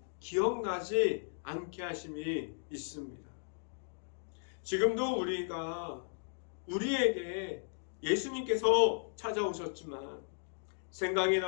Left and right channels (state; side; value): silent; right; digital silence